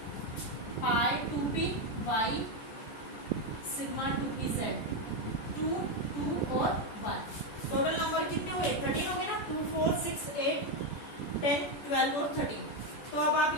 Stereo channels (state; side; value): late; right; 14 ms